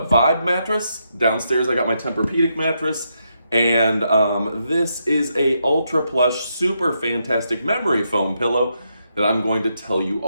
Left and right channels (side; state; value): both; inverted; correlation -0.80